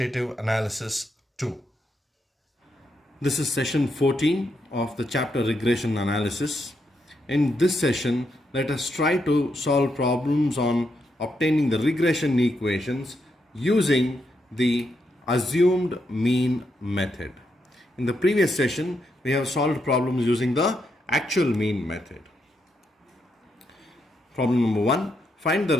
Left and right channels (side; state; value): both; normal; correlation 0.81